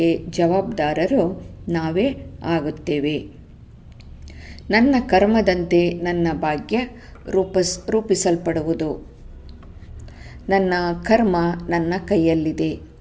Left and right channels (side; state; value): both; identical; correlation 1.00